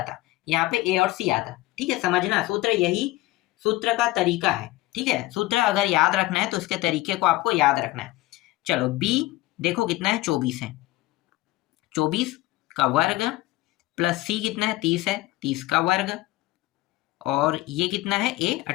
यहाँ पे a और c आता, ठीक है। समझना सूत्र, यही सूत्र का तरीका है, ठीक है। सूत्र अगर याद रखना है तो इसके तरीके को आपको याद रखना है। चलो b देखो कितना है, 24 है, 24 का वर्ग प्लस c कितना है, 30 है, 30 का वर्ग, और ये कितना है, a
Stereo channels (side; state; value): right; quieter; 18.6 dB